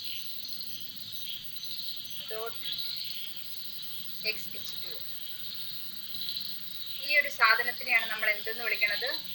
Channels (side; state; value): both; identical; correlation 1.00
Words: dot XH2O. ഈ ഒരു സാധനത്തിനെയാണ് നമ്മൾ എന്തെന്ന് വിളിക്കുന്നത്?